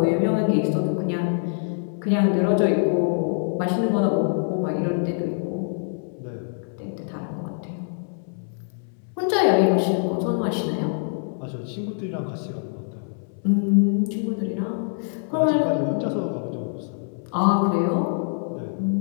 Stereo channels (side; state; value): right; silent; 62 dB below the other